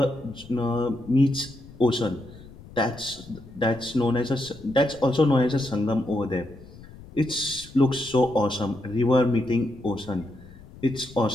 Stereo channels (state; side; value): noise; left; rumble, 19 dB below the sound